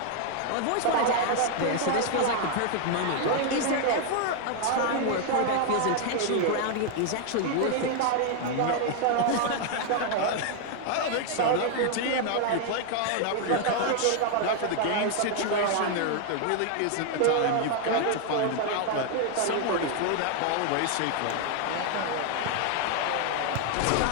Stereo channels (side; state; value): both; different; correlation 0.00